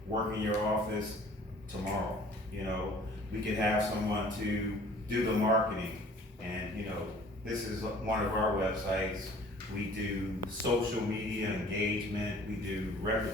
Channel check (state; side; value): normal; both; correlation 0.51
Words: work in your office tomorrow. You know, we could have someone to do the marketing. And, you know, this is one of our websites. We do social media engagement, we do